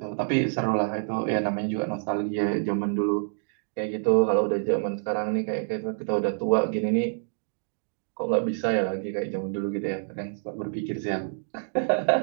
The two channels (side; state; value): left; silent; digital silence